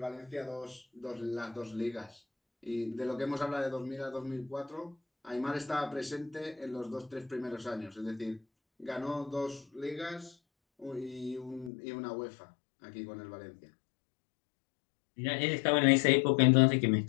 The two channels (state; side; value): drops out; right; at 11.7 s